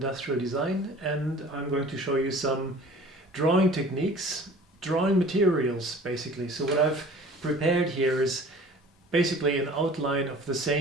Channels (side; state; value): both; normal; correlation 0.46